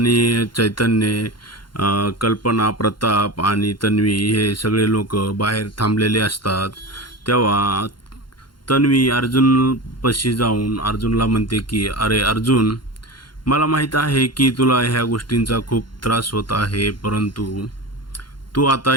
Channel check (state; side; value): late; right; 0.72 ms